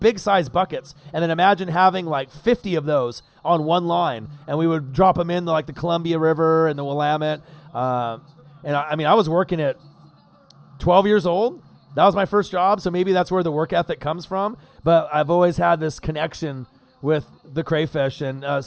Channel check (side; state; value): both; identical; correlation 1.00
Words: buckets. And then imagine having like 50 of those on one line, and we would drop them in like the Columbia River and the Willamette. And I mean, I was working at 12 years old. That was my first job, so maybe that's where the work ethic comes from. But I've always had this connection with the crayfish. And